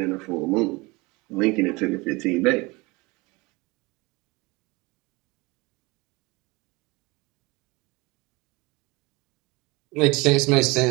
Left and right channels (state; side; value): quieter; left; 24.0 dB